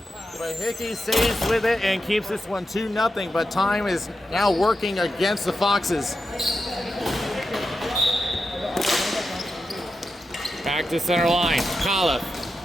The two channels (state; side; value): normal; both; correlation 0.89